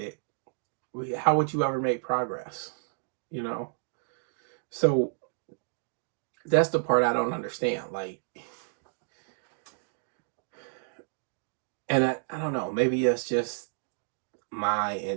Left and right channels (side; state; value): left; silent; digital silence